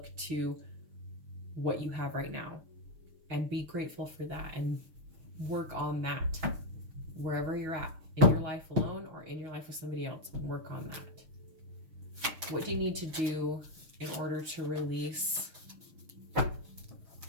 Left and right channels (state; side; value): late; left; 6.3 ms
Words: to what you have right now and be grateful for that, and work on that wherever you're at, in your life alone or in your life with somebody else. Work on that. What do you need to do in order to release?